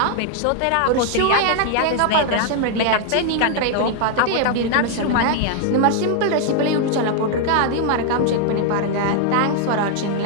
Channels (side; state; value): both; different; correlation 0.00